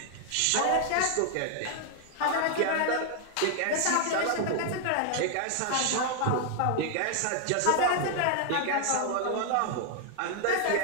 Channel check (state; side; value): different; both; correlation 0.00